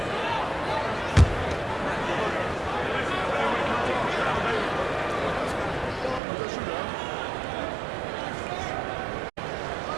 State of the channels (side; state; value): left; drops out; at 6.2 s